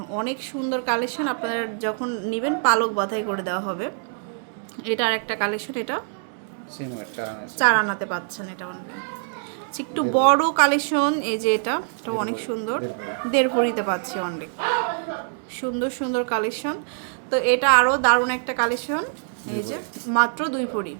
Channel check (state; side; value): silent; left; 62 dB below the other